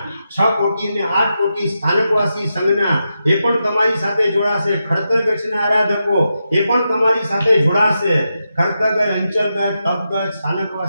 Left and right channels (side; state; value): both; inverted; correlation -0.87